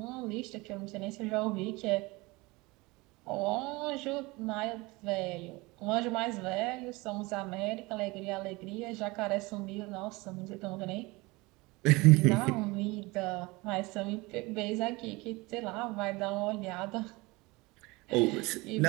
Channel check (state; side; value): quieter; left; 23.6 dB